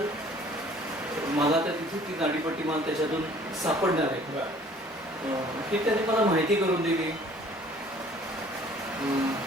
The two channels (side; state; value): both; normal; correlation 0.54